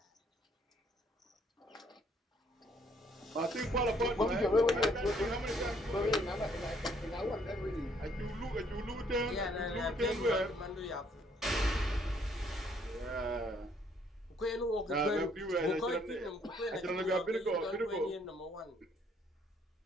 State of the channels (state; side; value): normal; both; correlation 0.66